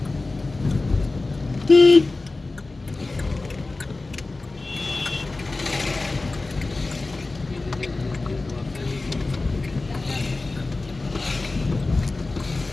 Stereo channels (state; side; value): quieter; right; 3.3 dB